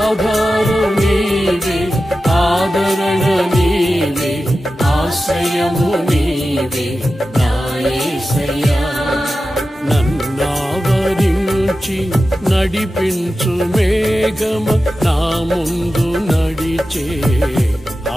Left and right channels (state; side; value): normal; both; correlation 0.93